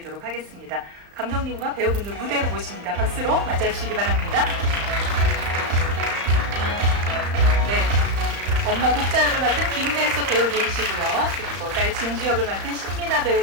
하겠습니다. 감독님과 배우분들 무대로 모십니다. 박수로 맞아주시기 바랍니다. 네, 엄마 국자 역을 맡은 김혜수 배우님이시고요. 그리고 딸 진주 역을 맡은 신민아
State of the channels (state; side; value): late; left; 35 ms